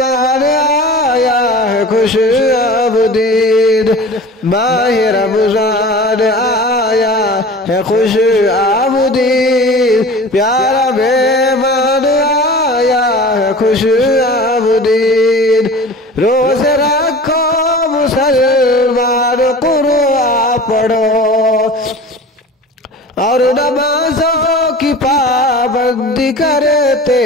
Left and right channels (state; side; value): normal; both; correlation 0.38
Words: آیا ہے خوش آمدید، ماہ رمضان آیا ہے خوش آمدید، پیارا مہمان آیا ہے خوش آمدید، روزے رکھو مسلمان قرآن پڑھو، اور نمازوں کی پابندی کرتے